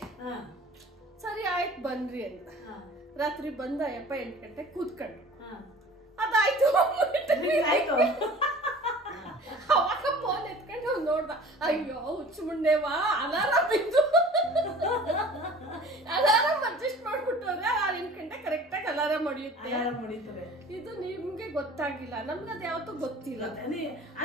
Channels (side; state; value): both; normal; correlation 0.45